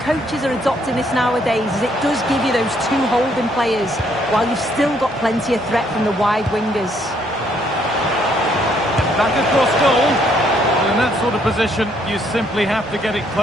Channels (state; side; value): normal; both; correlation 0.69